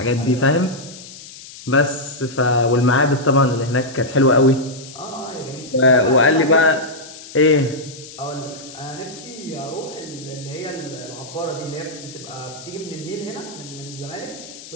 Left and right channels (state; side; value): noise; left; hiss, 16 dB below the sound